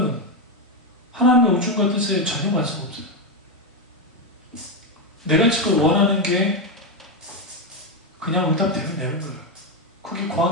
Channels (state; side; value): normal; both; correlation 0.07